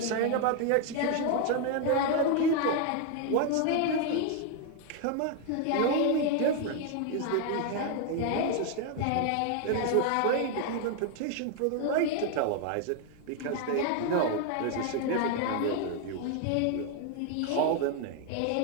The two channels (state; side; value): different; both; correlation 0.00